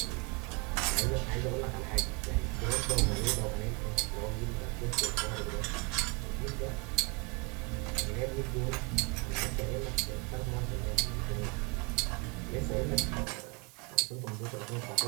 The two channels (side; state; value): left; quieter; 31.3 dB